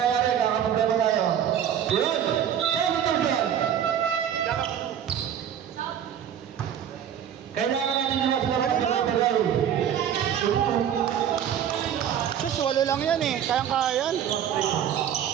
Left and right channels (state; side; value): quieter; left; 9.4 dB